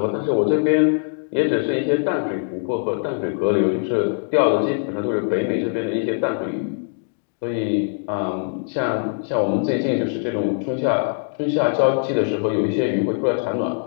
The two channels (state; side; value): silent; right; digital silence